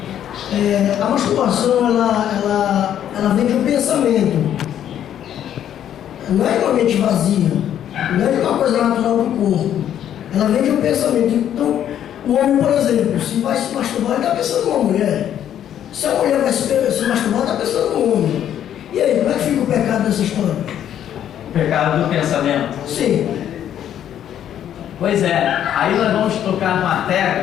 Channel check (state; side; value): quieter; right; 10.3 dB